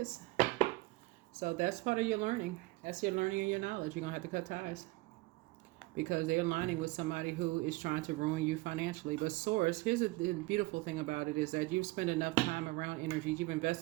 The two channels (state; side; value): quieter; left; 21.8 dB